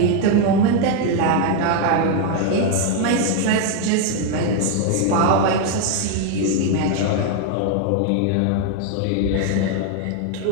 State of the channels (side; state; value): both; different; correlation 0.01